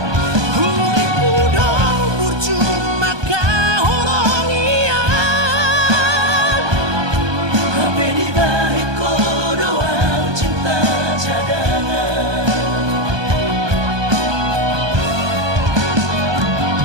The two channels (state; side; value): late; left; 1.2 ms